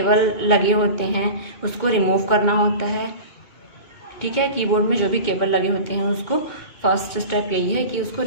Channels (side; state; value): right; late; 2.2 ms